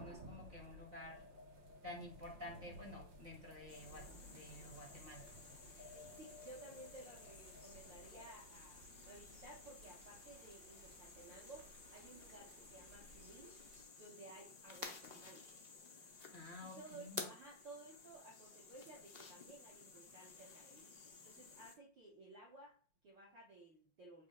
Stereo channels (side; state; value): left; late; 5.6 ms